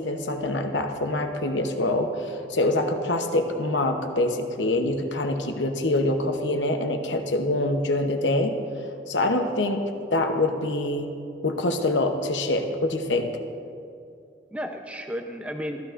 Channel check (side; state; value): both; normal; correlation 0.19